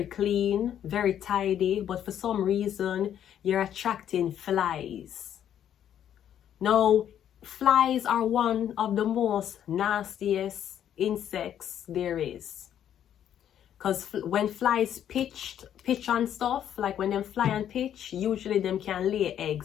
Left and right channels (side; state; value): right; quieter; 10.0 dB